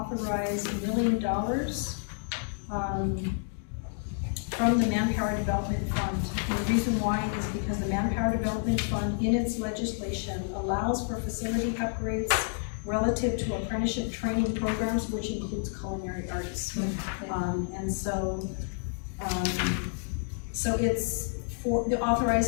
$1 million from the Manpower Development Fund. And the reason why is because the Manpower Development Fund in its legislation allows for facility upgrades relative to apprenticeship training programs, which includes culinary arts. And so it's it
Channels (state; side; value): silent; right; digital silence